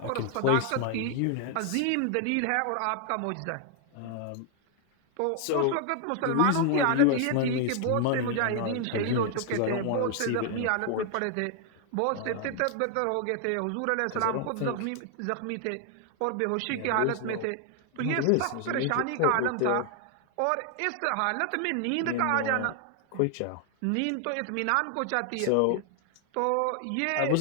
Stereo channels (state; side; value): different; both; correlation 0.00